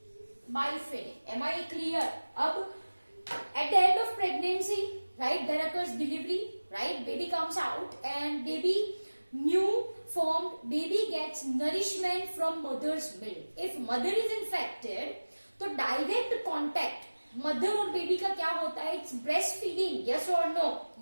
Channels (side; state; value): both; inverted; correlation -1.00